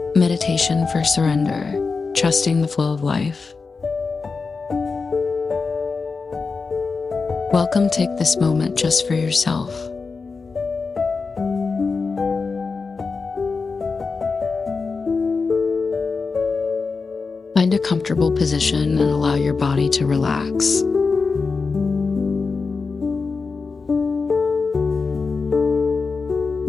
Meditation for surrender, trusting the flow of life. Welcome. Take this moment just for yourself. Find a comfortable position and allow your body to relax.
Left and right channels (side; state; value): right; quieter; 4.5 dB